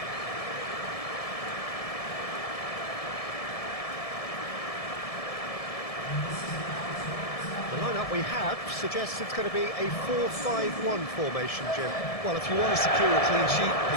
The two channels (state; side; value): late; right; 1.7 ms